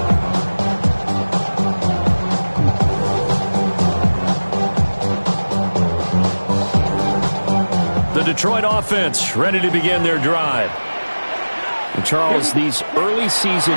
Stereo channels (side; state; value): both; inverted; correlation -1.00